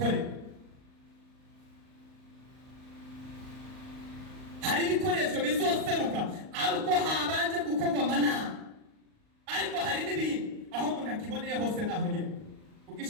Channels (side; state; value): left; late; 38 ms